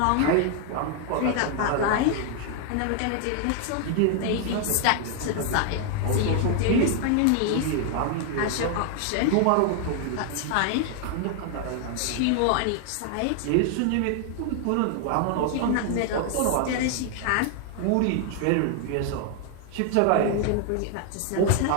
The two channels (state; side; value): different; both; correlation 0.00